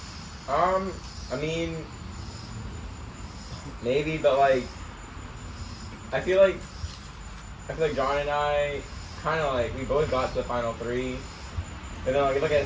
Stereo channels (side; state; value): both; identical; correlation 1.00